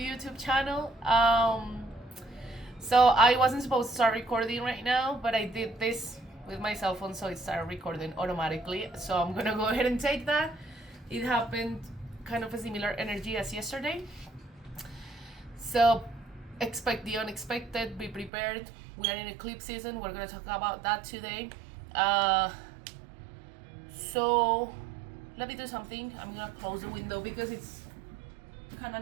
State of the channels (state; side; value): drops out; left; at 18.3 s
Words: channel. So I wasn't supposed to start recording right now, but I did this with my cell phone, so it started recording automatically. So I'm gonna go ahead and take that. It happened kind of a similar energy as yesterday. So expect the unexpected, be prepared. We are in eclipse season. We're gonna talk about that today. So let me do something. I'm gonna close the window because it's kind